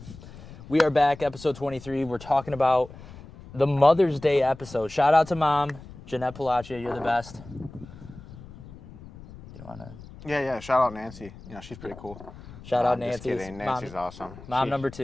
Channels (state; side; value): noise; left; rumble, 17 dB below the sound